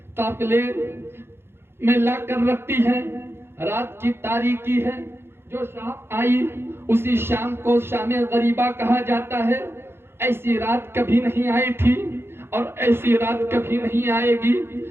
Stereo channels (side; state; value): left; late; 0.11 ms